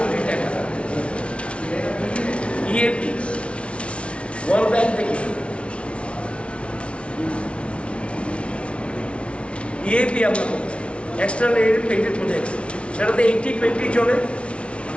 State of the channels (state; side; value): late; right; 0.060 ms